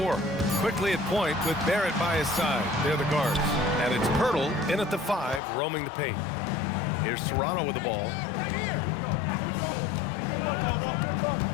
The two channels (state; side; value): drops out; right; at 5.4 s